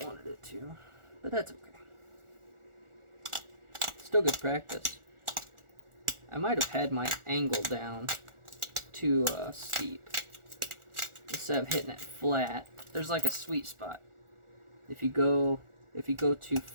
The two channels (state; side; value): late; left; 1.4 ms